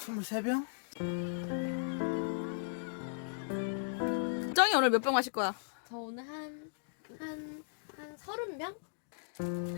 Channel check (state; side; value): silent; right; digital silence